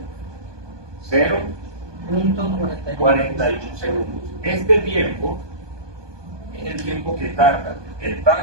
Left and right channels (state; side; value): late; left; 1.2 ms